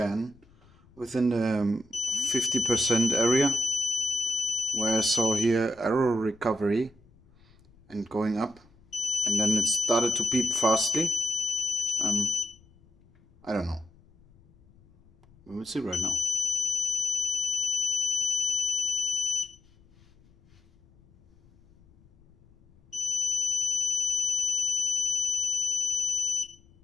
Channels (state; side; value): noise; left; rumble, 29 dB below the sound